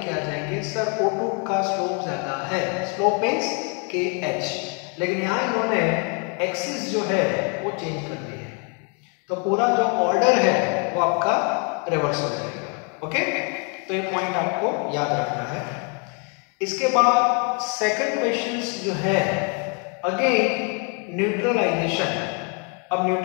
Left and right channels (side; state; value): right; quieter; 36.8 dB